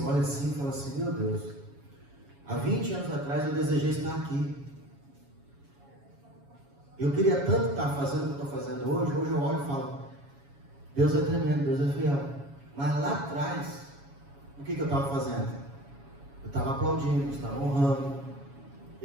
olho assim e falo assim, meu Deus, há 20 anos atrás eu desejei estar aqui. Eu queria tanto estar fazendo o que eu estou fazendo hoje. Hoje eu olho e falo, Deus é tremendo, Deus é fiel. Mas lá atrás, o que eu estava fazendo? Eu estava aplaudindo, eu estava honrando,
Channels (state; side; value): late; left; 7.2 ms